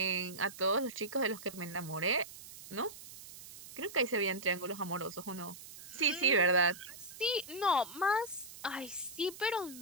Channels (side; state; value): right; noise; hiss, 15 dB below the sound